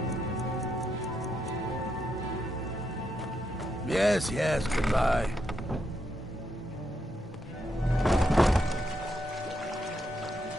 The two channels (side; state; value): both; normal; correlation 0.81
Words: Yes, yes, goodbye.